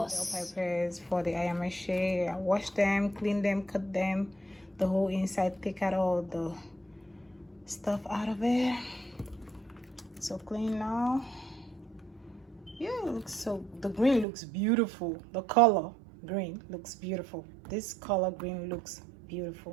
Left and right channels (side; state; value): left; drops out; at 14.2 s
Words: Bell peppers for the Ayamase. I wash them, clean them, cut them, the whole inside, take out all the stuff out of it. So clean now. Yeah, it looks so, the green looks beautiful. The color green looks beautiful. This color green looks